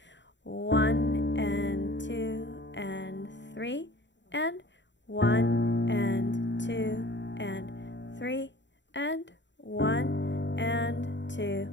1 and 2 and 3 and 1 and 2 and 3 and 1 and 2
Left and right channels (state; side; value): late; right; 0.52 ms